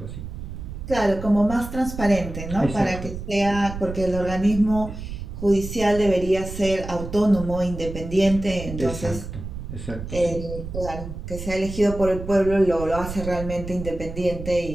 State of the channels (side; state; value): right; noise; rumble, 9 dB below the sound